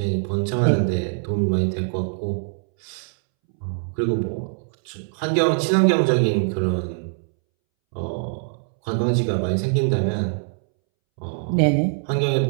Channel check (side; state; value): left; silent; 64 dB below the other